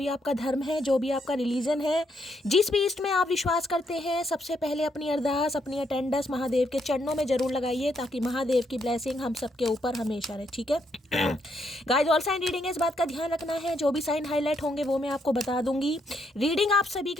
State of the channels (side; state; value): both; normal; correlation 0.76